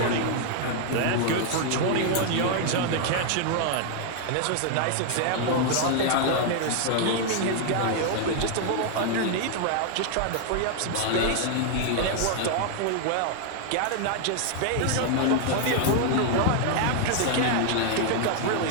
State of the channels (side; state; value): both; different; correlation 0.00